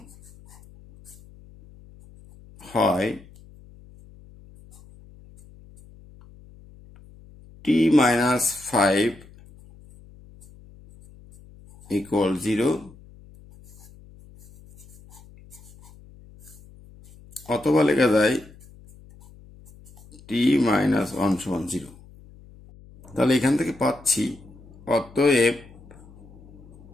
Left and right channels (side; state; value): left; noise; hum, 23 dB below the sound